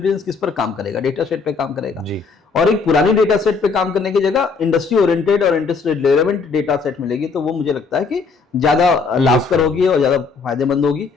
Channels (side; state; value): right; quieter; 4.7 dB